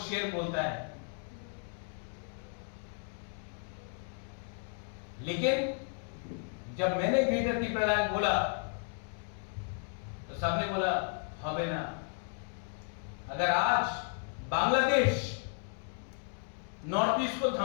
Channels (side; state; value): right; silent; 55 dB below the other